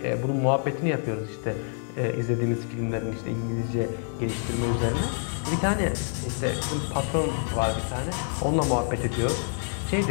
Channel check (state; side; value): silent; right; digital silence